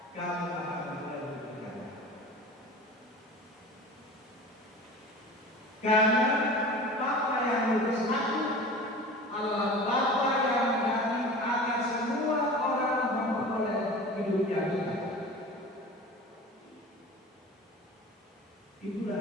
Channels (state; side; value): normal; both; correlation 0.37